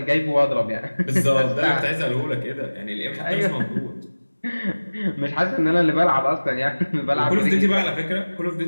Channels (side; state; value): both; inverted; correlation -1.00